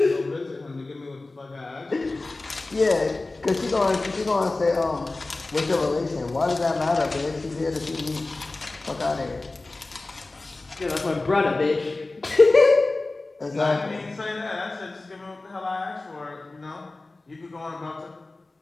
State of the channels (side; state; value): right; quieter; 3.2 dB